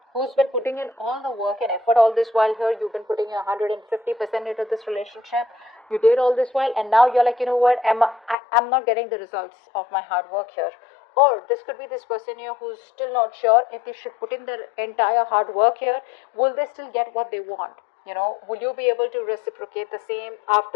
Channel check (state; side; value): drops out; right; at 8.3 s